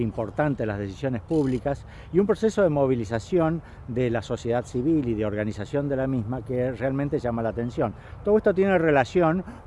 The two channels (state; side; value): identical; both; correlation 1.00